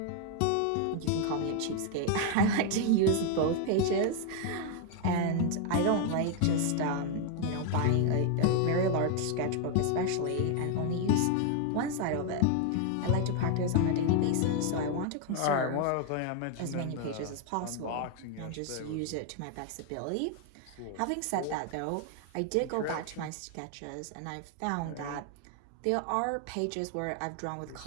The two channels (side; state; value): both; different; correlation 0.01